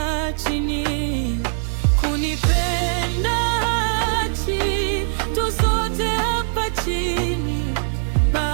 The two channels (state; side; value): silent; left; digital silence